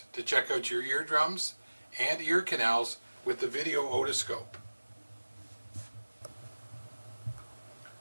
to check out your eardrums and ear canals with the video otoscope.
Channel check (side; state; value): both; inverted; correlation -1.00